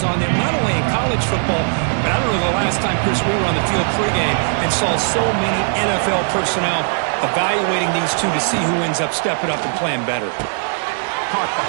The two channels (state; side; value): silent; left; 67 dB below the other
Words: on them, not only in college football, but I don't know the last time, Chris, we were on the field pregame and saw so many NFL personnel evaluating these two to see who ends up stepping up and playing better. Caught